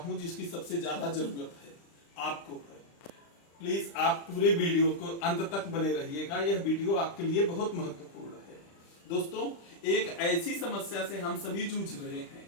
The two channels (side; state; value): right; late; 35 ms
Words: जिसकी सबसे ज्यादा जरूरत है, आपको है। प्लीज आप पूरे वीडियो को अंत तक बने रहिएगा, यह वीडियो आपके लिए बहुत महत्वपूर्ण है। दोस्तों, एक ऐसी समस्या से हम सभी जूझ रहे हैं,